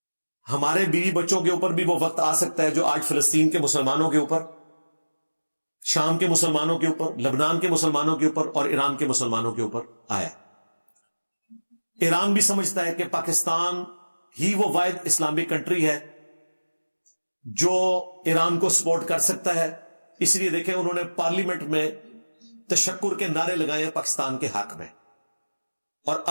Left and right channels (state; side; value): inverted; both; correlation -1.00